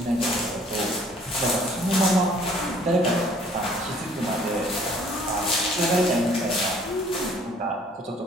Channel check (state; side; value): normal; both; correlation 0.58